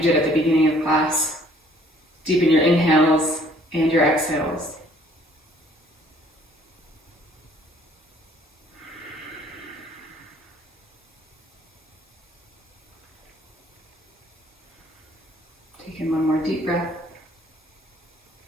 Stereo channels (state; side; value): normal; both; correlation 0.59